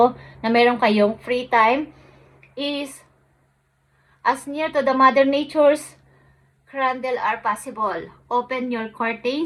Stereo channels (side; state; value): both; identical; correlation 1.00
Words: na meron kayong free time is as near to the Mother Nature's candle are possible. Open your